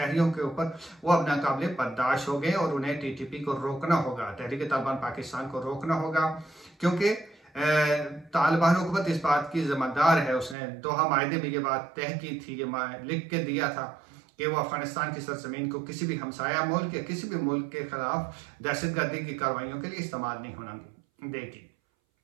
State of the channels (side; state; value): left; drops out; at 10.6 s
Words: के ऊपर, वो अब नाकाबिले बर्दाश्त हो गए और उन्हें टीटीपी को रोकना होगा, तहरीक तालिबान पाकिस्तान को रोकना होगा। क्योंकि तालिबान हुकूमत इस बात की ज़िम्मेदार है, उसने दोहा मायदे में ये बात तय की थी, ये लिख के दिया था कि वो अफगानिस्तान की सरजमीन को किसी भी हमसाया मुल्क या किसी भी मुल्क के खिलाफ दहशतगर्दी की कार्रवाइयों के लिए इस्तेमाल नहीं होना देगी।